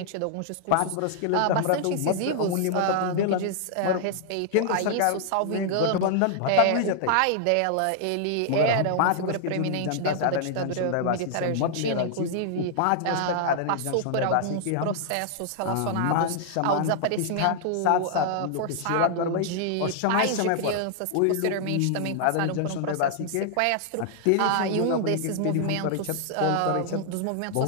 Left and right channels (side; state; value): both; different; correlation -0.01